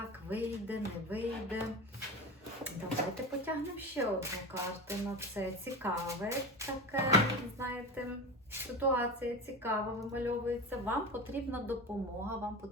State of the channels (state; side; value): normal; both; correlation 0.26